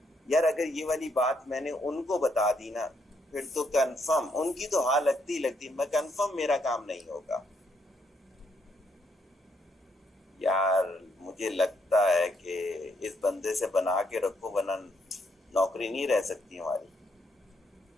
यार अगर ये वाली बात मैंने उनको बता दी ना फिर तो कंफर्म उनकी तो हाँ लगती मैं कंफर्म मेरा काम नहीं होगा। यार मुझे लगता है कि इस बंदे से बना के रखो वरना नौकरी नहीं रह सकती हमारी।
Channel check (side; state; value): both; normal; correlation 0.74